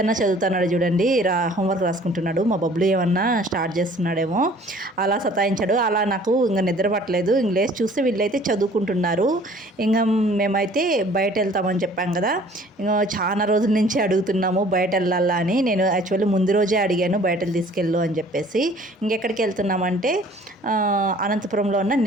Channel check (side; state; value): both; normal; correlation 0.53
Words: చదువుతున్నాడు చూడండి, హోంవర్క్ రాసుకుంటున్నాడు. మా బబ్లు ఏమన్నా స్టార్ట్ చేస్తున్నాడేమో, అలా సతాయించాడు. అలా నాకు ఇంకా నిద్ర పట్టలేదు. ఇంక లేచి చూస్తే వీళ్ళైతే చదువుకుంటున్నారు. ఇంకా మేమైతే బయట వెళ్తామని చెప్పాం కదా, ఇంకా చాలా రోజుల నుంచి అడుగుతున్నాము బయట వెళ్ళాలా అని. నేను యాక్చువల్లీ ముందు రోజే అడిగాను బయటకు తీసుకెళ్ళు అని చెప్పేసి. ఇంకెక్కడికి వెళ్తున్నామంటే అనంతపురంలో ఉన్న